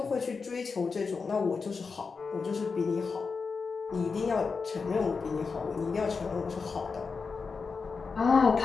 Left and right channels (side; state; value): right; quieter; 4.9 dB